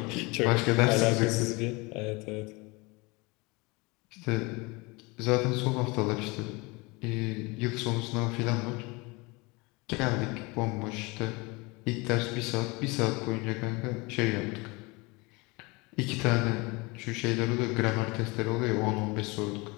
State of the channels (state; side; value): quieter; right; 26.0 dB